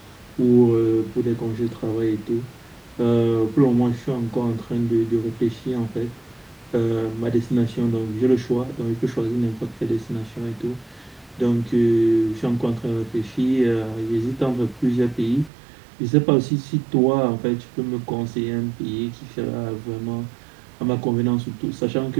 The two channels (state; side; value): drops out; left; at 15.5 s